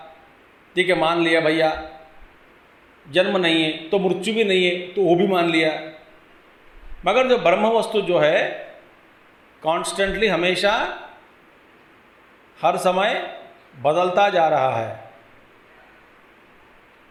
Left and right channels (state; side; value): identical; both; correlation 1.00